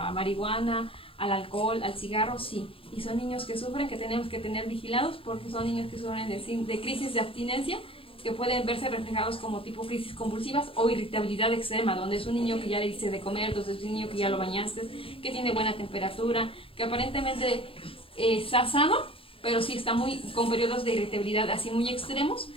marihuana, al alcohol, al cigarro, sí. Y son niños que sufren, que tenemos que tener vigilados, porque son niños que sufren de crisis de abstinencia, que pueden verse reflejados como tipo crisis convulsivas o irritabilidad extrema, donde es un niño que ya le diste de comer, entonces es un niño que ya lo bañaste, que tiene buena temperatura, que aparentemente está sano, pero sí está con periodos de irritabilidad así muy extremos,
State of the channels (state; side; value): late; right; 0.27 ms